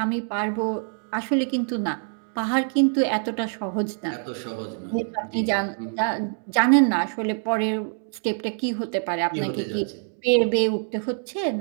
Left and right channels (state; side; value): silent; left; 62 dB below the other